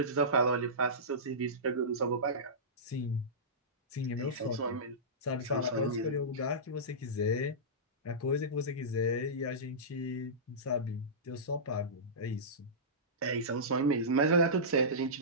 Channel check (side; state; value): both; normal; correlation -0.19